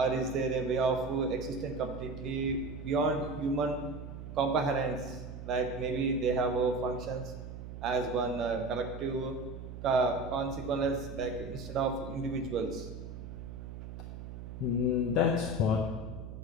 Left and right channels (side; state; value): right; noise; hum, 10 dB below the sound